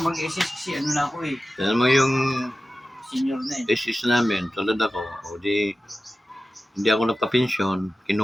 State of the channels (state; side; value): normal; both; correlation 0.94